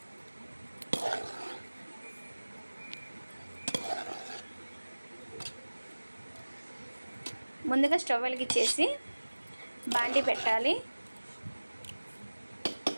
ముందుగా స్టవ్ వెలిగించేసి బాండి పెట్టాలి.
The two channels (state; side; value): inverted; both; correlation -1.00